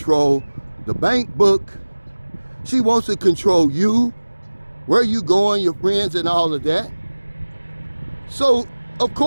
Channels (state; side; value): inverted; both; correlation -1.00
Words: the bank book. She wants to control you, where you going, your friends, and all of that. So, of